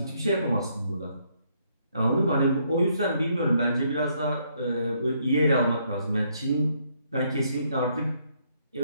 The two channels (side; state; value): both; inverted; correlation -0.71